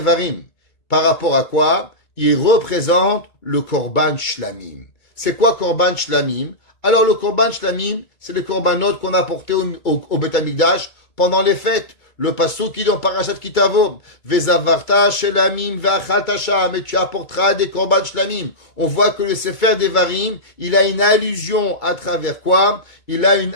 Par rapport à quoi? Il représente le Korban Shlamim. C'est quoi Korban Shlamim? Alors le Korban Shlamim, c'est les Korbanot qu'on a portés au Beth Amikdash pendant les fêtes. Le pasuk qui est dans Parashat Kitavo, Vezavarta Shlamim ve'achalta sham, et tu apporteras des Korban Shlamim. On voit que le Sefer Devarim, il a une allusion à travers quoi? Il a une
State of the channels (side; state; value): right; late; 2.2 ms